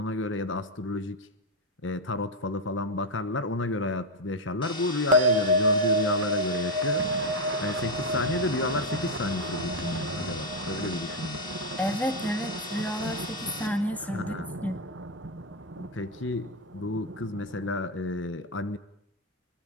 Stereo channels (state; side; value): normal; both; correlation 0.05